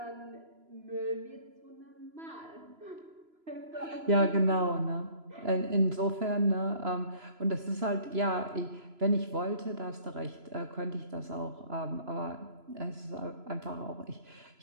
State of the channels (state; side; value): late; left; 3.0 ms